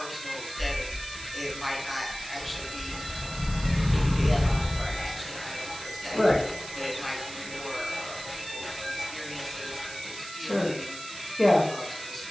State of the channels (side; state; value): right; noise; hiss, 12 dB below the sound